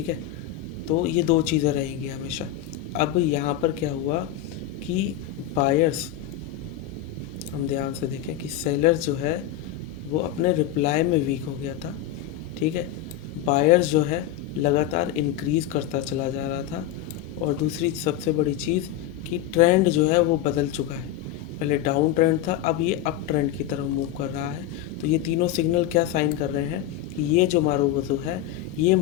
है, तो ये दो चीज़ें रहेंगी हमेशा। अब यहाँ पर क्या हुआ कि बायर्स, हम ध्यान से देखें कि सेलर्स जो है वो अपने रिप्लाई में वीक हो गया था। ठीक है, बायर्स जो है लगातार इंक्रीज़ करता चला जा रहा था। और दूसरी सबसे बड़ी चीज़ कि ट्रेंड जो है वो बदल चुका है। पहले डाउन ट्रेंड था, अब ये अप ट्रेंड की तरफ मूव कर रहा है। तो ये तीनों सिग्नल क्या साइन कर रहे हैं कि ये जो मारूबुजू है, ये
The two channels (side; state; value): right; quieter; 11.5 dB